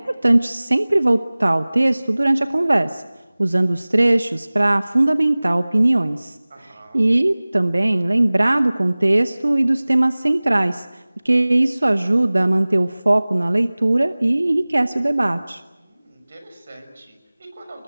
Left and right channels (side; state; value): both; inverted; correlation -1.00